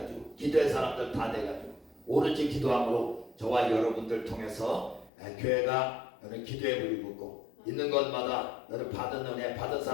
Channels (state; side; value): drops out; right; at 5.1 s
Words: 기도의 사람들 다 돼가지고 오로지 기도함으로 저와 여러분들 통해서 교회가 여러분 기도의 불이 붙고 있는 것마다 여러분 받은 은혜 받은